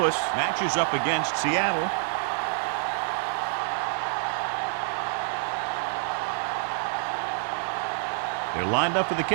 matches up against Seattle. They're lined up for the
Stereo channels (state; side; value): silent; left; 58 dB below the other